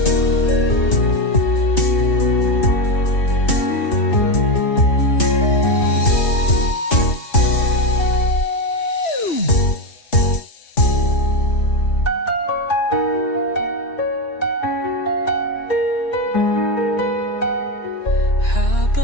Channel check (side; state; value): right; late; 3.1 ms